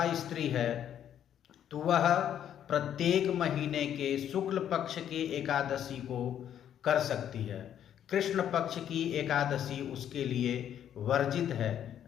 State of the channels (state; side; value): quieter; right; 10.0 dB